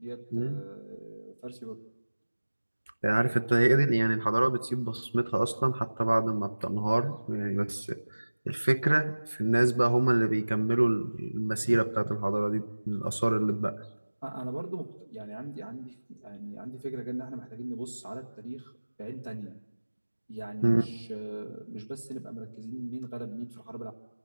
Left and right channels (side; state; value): both; inverted; correlation -1.00